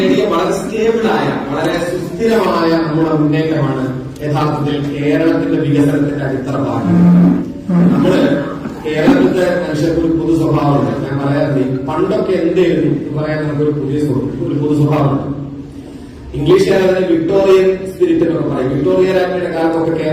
വളരെ സ്റ്റേബിളായ, വളരെ സുസ്ഥിരമായ നമ്മുടെ മുന്നേറ്റമാണ് യഥാർത്ഥത്തിൽ കേരളത്തിന്റെ വികസനത്തിന്റെ അടിത്തറ ഭാഗം. നമ്മള് കേരളത്തിന്റെ മനുഷ്യർക്ക് ഒരു പൊതു സ്വഭാവമുണ്ട്. ഞാൻ പറയാറുണ്ട്, പണ്ടൊക്കെ എന്തായിരുന്നു എന്ന് പറയാൻ നമുക്കൊരു പൊതു സ്വഭാവമുണ്ട്. ഇംഗ്ലീഷുകാർ അതിനെ വിക്ടോറിയൻ സ്പിരിറ്റ് എന്നൊക്കെ പറയും. വിക്ടോറിയ രാജ്ഞിയുടെ കാലത്തൊക്കെ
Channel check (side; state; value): both; identical; correlation 1.00